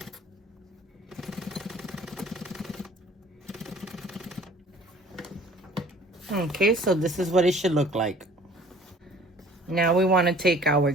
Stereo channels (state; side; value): normal; both; correlation 0.51